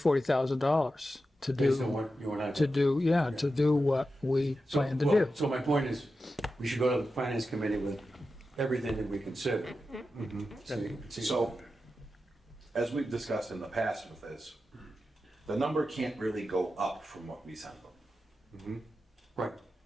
to based on do, what you and I. to do what we So, plan to well, do. So my point is, we should go to the finance committee with everything that we consider. So you can see- so, as we've discussed in the past with this, the number can't really go up from what we send them. Right,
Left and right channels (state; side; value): normal; both; correlation 0.91